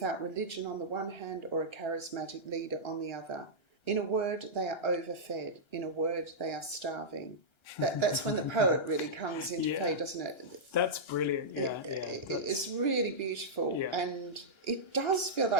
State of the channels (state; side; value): late; right; 1.3 ms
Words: religion on the one hand or a charismatic leader on the other. In a word, they are overfed. In a word, they are starving. That's when the poet really comes into play, doesn't it? That's brilliant. It's really beautiful. Yeah. And it does feel